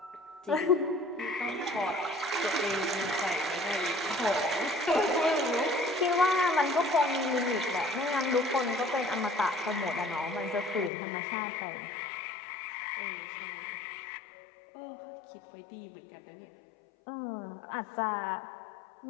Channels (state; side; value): drops out; right; at 10.9 s